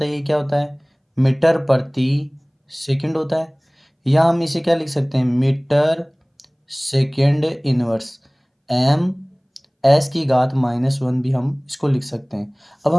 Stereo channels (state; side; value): identical; both; correlation 1.00